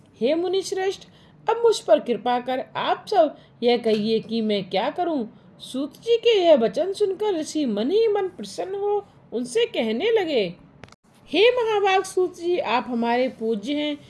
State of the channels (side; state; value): both; identical; correlation 1.00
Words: हे मुनि श्रेष्ठ, अब मुझ पर कृपा कर आप सब यह कहिए कि मैं क्या करूं। सूत जी के यह वचन सुनकर ऋषि मन ही मन प्रसन्न हो उनसे कहने लगे, हे महाभाग सूत जी, आप हमारे पूज्य हैं,